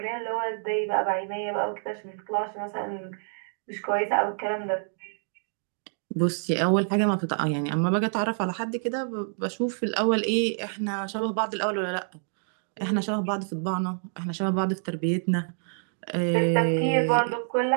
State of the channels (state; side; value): silent; left; digital silence